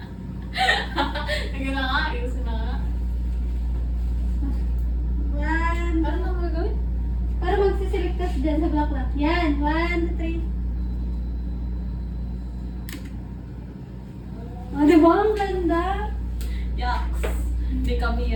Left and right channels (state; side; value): identical; both; correlation 1.00